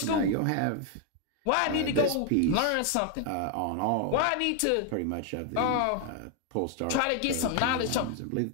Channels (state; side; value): different; both; correlation 0.01